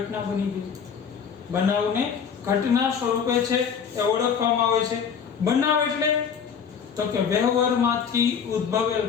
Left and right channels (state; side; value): quieter; right; 7.0 dB